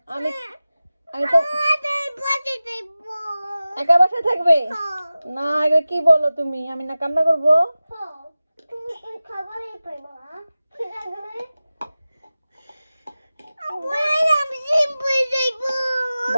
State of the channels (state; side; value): inverted; both; correlation -0.96